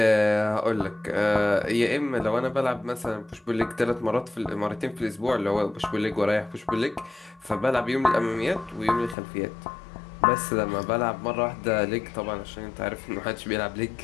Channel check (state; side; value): drops out; right; at 9.2 s